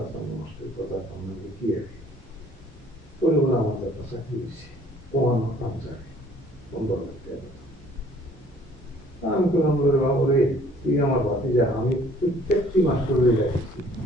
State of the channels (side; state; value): both; normal; correlation 0.57